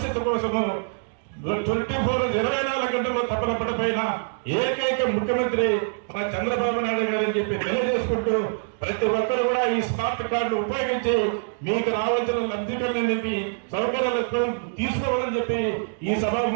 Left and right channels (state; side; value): silent; left; digital silence